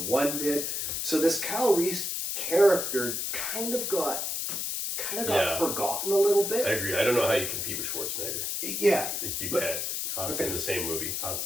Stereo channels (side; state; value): left; noise; hiss, 2 dB below the sound